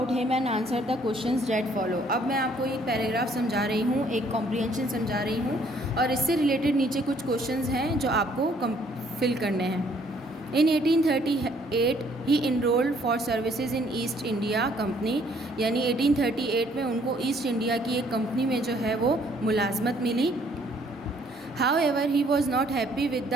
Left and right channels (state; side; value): normal; both; correlation 0.63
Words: him and answer the questions that follow. अब मैं आपको एक पैराग्राफ समझा रही हूँ, एक कॉम्प्रीहेंशन समझा रही हूँ, और इससे रिलेटेड नीचे कुछ क्वेश्चंस हैं जो आपको फिल करने हैं। In 1838 he enrolled for services in East India Company, यानी 1838 में उनको ईस्ट इंडिया की एक कंपनी में जो है वो मुलाजमत मिली। However he was not happy with